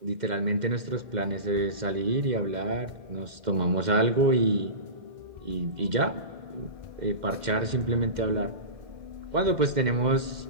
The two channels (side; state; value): left; late; 2.1 ms